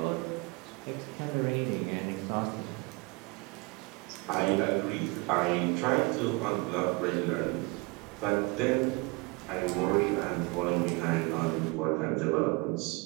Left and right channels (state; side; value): quieter; left; 27.3 dB